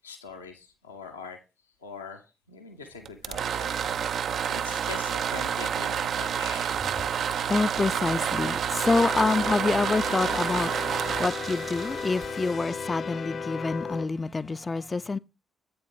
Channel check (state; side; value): normal; both; correlation 0.80